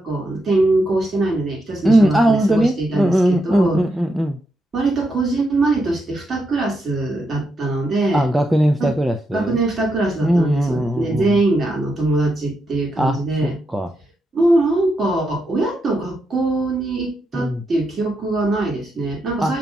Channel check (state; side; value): normal; both; correlation 0.83